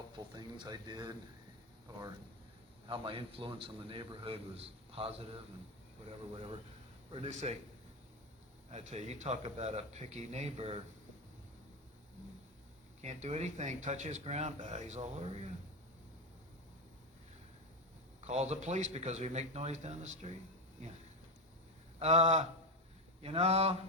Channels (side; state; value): both; normal; correlation 0.13